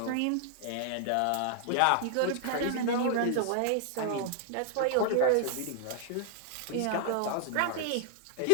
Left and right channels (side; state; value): both; different; correlation -0.01